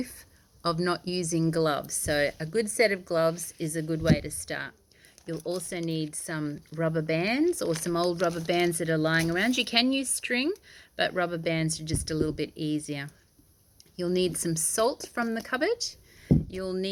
of not using gloves. So a good set of gloves is a good way to start. You'll also need some rubber bands or some old rubber bands that are lying around. You can use string, but rubber bands are just a little bit easier. You'll need some salt from the cupboard. You'll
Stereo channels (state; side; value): identical; both; correlation 1.00